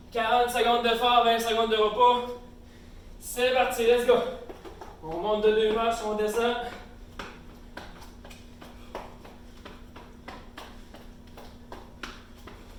40 secondes d'effort, 20 secondes de repos. C'est parti, let's go. On monte de 2 marches, on descend.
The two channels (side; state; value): both; identical; correlation 1.00